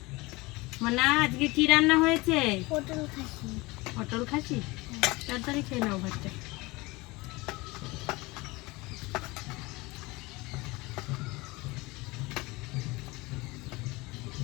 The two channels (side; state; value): right; quieter; 23.0 dB